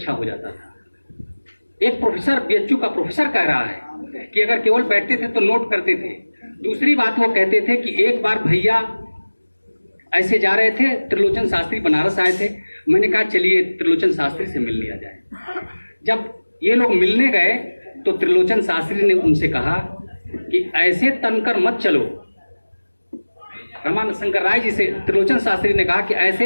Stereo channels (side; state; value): both; inverted; correlation -1.00